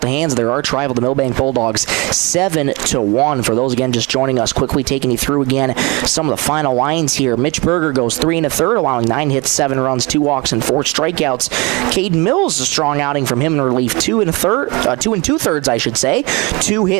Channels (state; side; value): quieter; left; 25.8 dB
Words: the hands of their arch rival, the Milbank Bulldogs, 7-1. For those, again, just joining us, quickly taking you through again some of the final lines here. Mitch Berger goes 3 1/3, allowing 9 hits, 7 runs, 2 walks, and 4 strikeouts. Caden Mills, a strong outing from him in relief, 2 2/3, I should say. 2